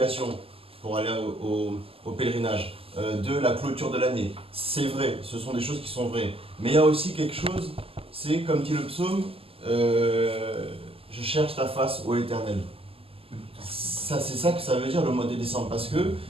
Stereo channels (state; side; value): late; left; 0.28 ms